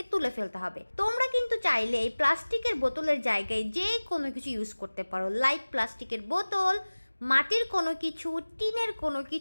তুলে ফেলতে হবে। তোমরা কিন্তু চাইলে এই প্লাস্টিকের বোতলের জায়গায় যে কোনো কিছু ইউজ করতে পারো, লাইক প্লাস্টিকের বোতল, মাটির কোনো কিছু, টিনের কোনো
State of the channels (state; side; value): inverted; both; correlation -1.00